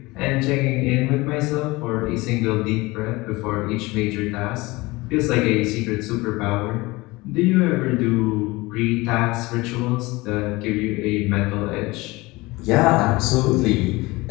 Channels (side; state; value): right; quieter; 22.0 dB